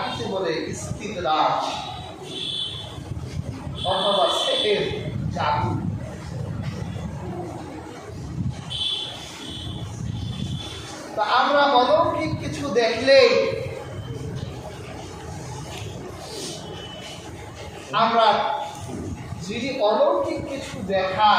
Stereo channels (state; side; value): identical; both; correlation 1.00